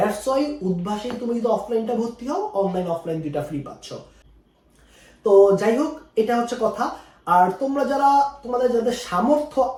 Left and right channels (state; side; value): identical; both; correlation 1.00